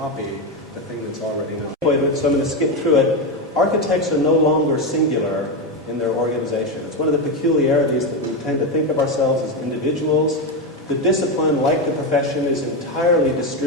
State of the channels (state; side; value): normal; both; correlation 0.11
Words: the thing that's already known. So I'm going to skip through it. Architects are no longer singular in their organization. It's one of the peculiarities that we tend to think of ourselves as individuals. The discipline, like the profession, is entirely